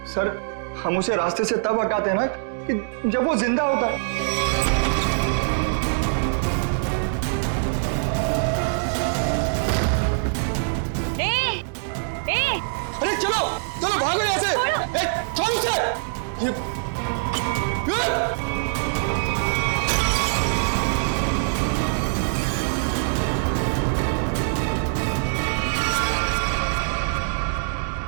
हम उसे रास्ते से तब हटाते हैं ना कि जब वो जिंदा होता है। अरे चलो भागो यहाँ से। छोड़ उसे।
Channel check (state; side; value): silent; left; 63 dB below the other